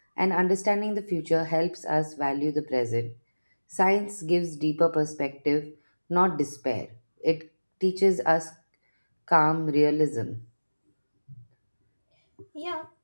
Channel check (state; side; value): inverted; both; correlation -1.00